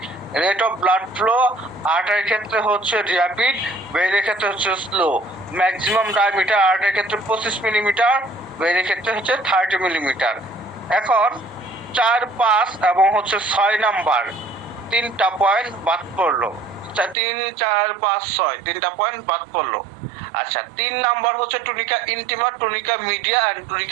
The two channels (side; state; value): left; drops out; at 17.2 s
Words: রেট অফ ব্লাড ফ্লো আর্টারির ক্ষেত্রে হচ্ছে র্যাপিড, ভেইনের ক্ষেত্রে হচ্ছে স্লো। ম্যাক্সিমাম ডায়ামিটার আর্টারির ক্ষেত্রে 25 মিলিমিটার, ভেইনের ক্ষেত্রে হচ্ছে 30 মিলিমিটার। এখন 4, 5 এবং হচ্ছে 6 নাম্বার তিনটা পয়েন্ট বাদ পড়লো। 3, 4, 5, 6 তিনটা পয়েন্ট বাদ পড়লো। আচ্ছা, 3 নাম্বার হচ্ছে টুনিকা ইন্টিমা, টুনিকা মিডিয়া এন্ড